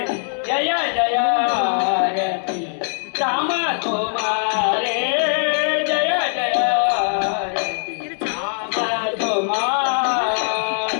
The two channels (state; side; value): silent; right; digital silence